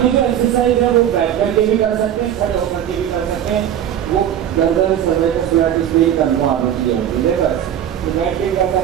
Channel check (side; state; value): left; quieter; 10.2 dB